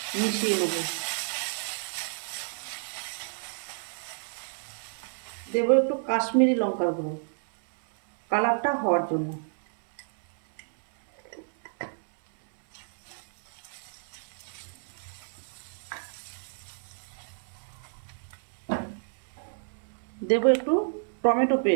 মিশিয়ে নেব। দেবো একটু কাশ্মীরি লঙ্কার গুঁড়ো। কালারটা হওয়ার জন্য। দেব একটু টমেটো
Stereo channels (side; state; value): left; silent; 58 dB below the other